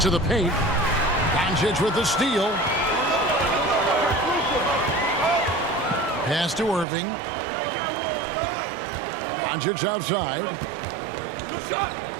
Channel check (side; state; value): left; drops out; at 6.9 s